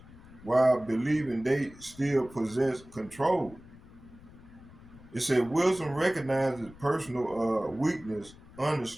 while believing they still possess control. It said wisdom recognizes personal weakness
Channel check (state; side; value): noise; left; rumble, 21 dB below the sound